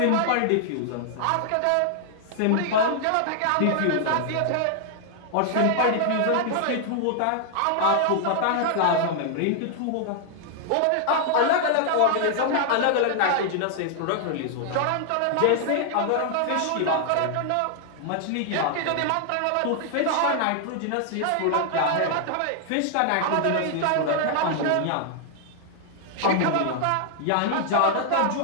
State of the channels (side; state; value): both; different; correlation 0.00